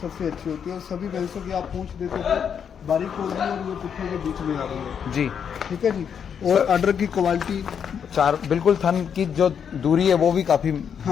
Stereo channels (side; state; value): right; quieter; 7.6 dB